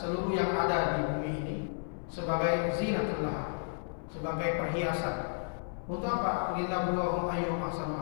yang ada di bumi ini sebagai zinatan laha, sebagai perhiasan. Untuk apa? Linabluwahum ayyuhum ahsanu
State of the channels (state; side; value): silent; right; 56 dB below the other